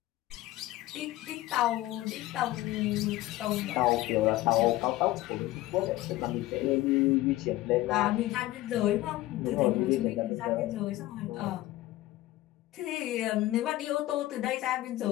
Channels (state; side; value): quieter; right; 16.6 dB